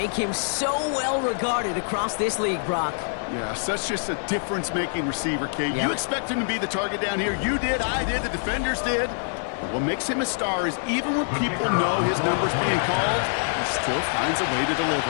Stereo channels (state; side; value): silent; right; 62 dB below the other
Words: him so well regarded across this league, Brock. Yeah, such just a difference-making receiver, Kate. Yep. You expect him to be the target down here. You did, I did, the defenders did. But what makes him a star is even when people know his number's being called, he still finds a way to